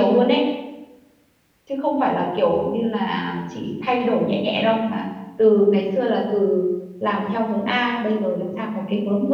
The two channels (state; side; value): identical; both; correlation 1.00